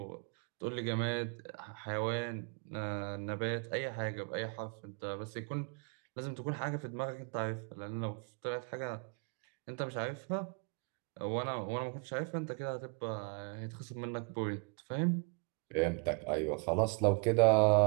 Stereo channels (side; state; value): left; quieter; 35.0 dB